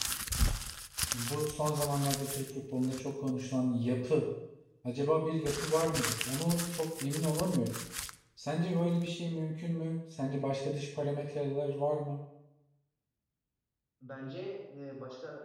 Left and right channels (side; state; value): both; identical; correlation 1.00